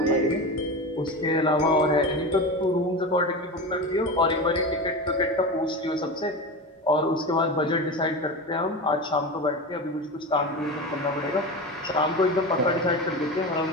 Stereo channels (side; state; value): both; normal; correlation 0.25